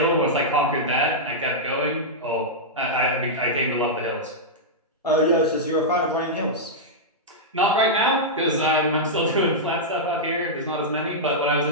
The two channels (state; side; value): normal; both; correlation -0.08